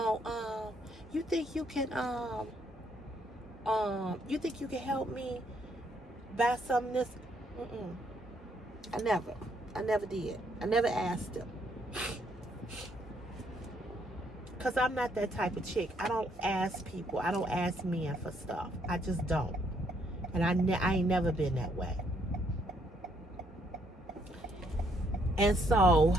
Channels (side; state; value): both; normal; correlation 0.71